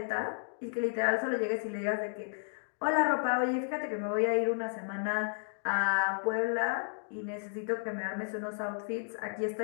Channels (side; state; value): right; silent; digital silence